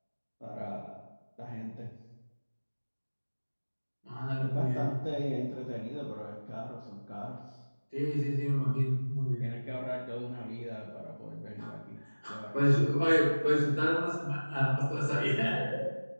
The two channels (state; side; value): inverted; both; correlation -1.00